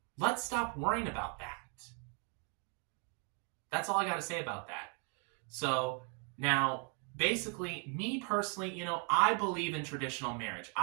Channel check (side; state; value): left; quieter; 38.4 dB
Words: let's stop worrying about that. That's all I got to say about that. So now, basically, me personally, I believe in traditional marriage.